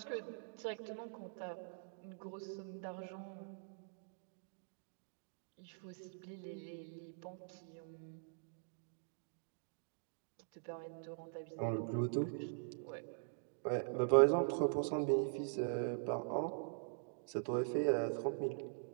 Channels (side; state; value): left; silent; digital silence